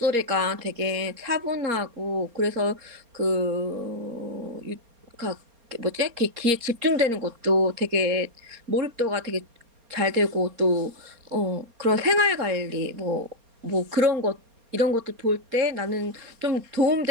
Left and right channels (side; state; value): left; late; 4.3 ms